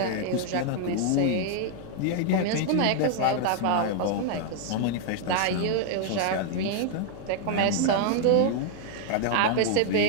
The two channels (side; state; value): both; different; correlation 0.00